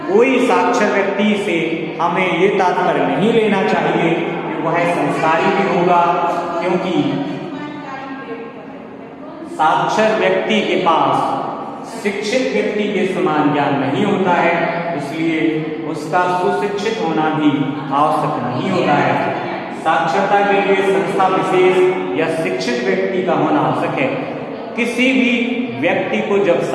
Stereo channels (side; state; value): both; identical; correlation 1.00